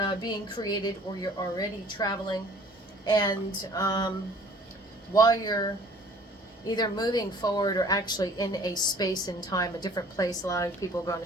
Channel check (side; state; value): both; normal; correlation 0.52